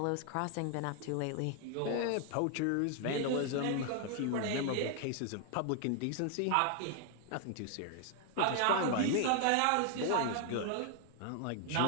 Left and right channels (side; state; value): both; different; correlation 0.00